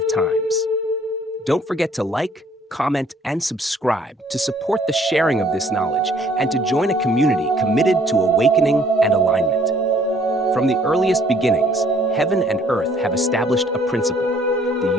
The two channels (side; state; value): both; normal; correlation 0.60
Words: times. Don't forget to like, comment, and subscribe to support the sharing of this knowledge and to join a community committed to awakening and alignment. From the earliest beginnings, heaven and earth have established a principle. The